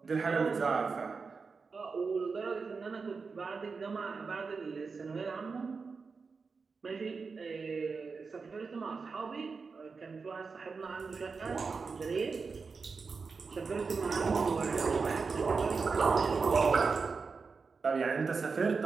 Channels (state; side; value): quieter; left; 4.8 dB